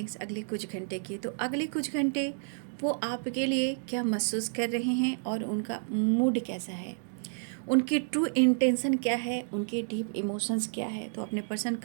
अगले कुछ घंटे की। तो अगले कुछ घंटे वो आपके लिए क्या महसूस कर रहे हैं और उनका मूड कैसा है, उनकी ट्रू इंटेंशन क्या है, उनके डीप इमोशंस क्या है। तो अपने पर्सन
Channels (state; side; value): silent; left; digital silence